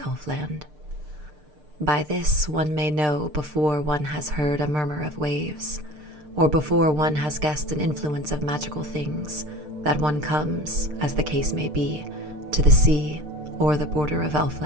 By this one may know before one has heard a murmur of waves, or before one has guessed an influence of magical things, that one comes, as the case may be, to the sea or the border of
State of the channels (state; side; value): late; left; 6.6 ms